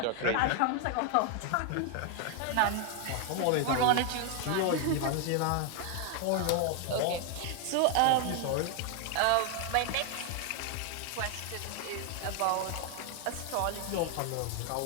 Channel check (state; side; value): different; both; correlation 0.01